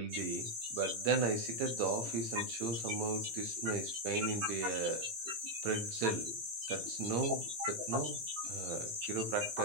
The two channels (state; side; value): late; left; 18 ms